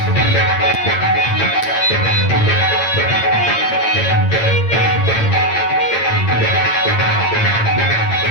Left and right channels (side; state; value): right; late; 8.8 ms